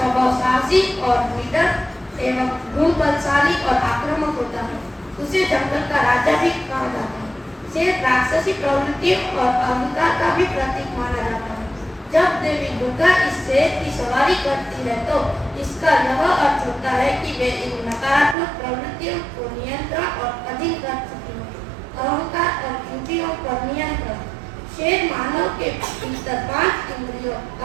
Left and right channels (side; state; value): left; drops out; at 18.4 s